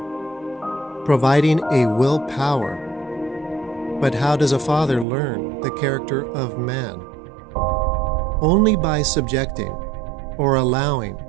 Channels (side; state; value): left; drops out; at 5.1 s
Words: providing a will power. But how does a father learn the character of man? Only by subjecting or allowing